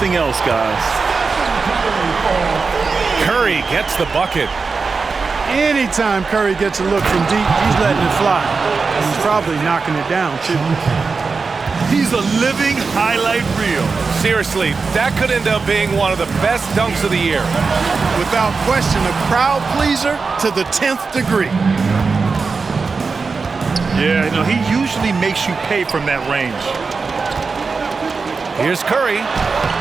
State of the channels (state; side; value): quieter; left; 4.6 dB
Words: else, guys. Curry gets the bucket. Anytime Curry gets a look from deep, he's letting it fly. He's probably knocking it down, too. He's a living highlight reel. Seriously, that could end up being one of the best dunks of the year. Without question, a crowd pleaser to the 10th degree. Yeah, you know, he usually makes you pay from that range. Here's Curry.